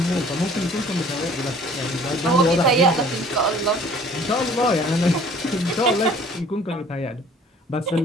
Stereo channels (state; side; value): normal; both; correlation 0.52